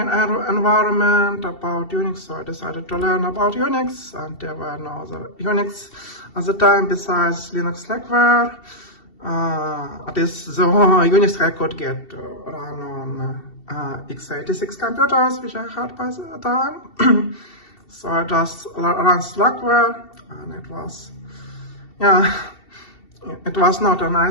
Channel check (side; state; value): right; late; 2.7 ms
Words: environment about Unix, so I decided to learn about Unix, and there were no other Unix at the time besides Linux Slackware. This is the only Unix I could get run on x86 computers, which I had by the time. So I just ran Slackware, and it was, yeah, it was not a